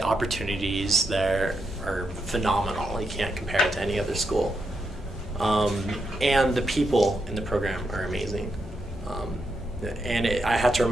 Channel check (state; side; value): normal; both; correlation 0.83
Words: there are phenomenal. You can't compare it to any other school. And the people in the program are amazing. And I have to